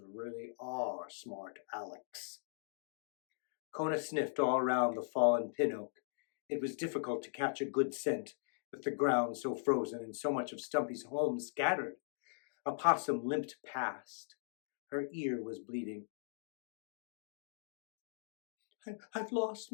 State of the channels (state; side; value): silent; right; digital silence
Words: really are smart Alex." Kona sniffed all around the fallen pin oak. It was difficult to catch a good scent, with the ground so frozen and so much of Stumpy's home scattered. A possum limped past. Her ear was bleeding. "I've lost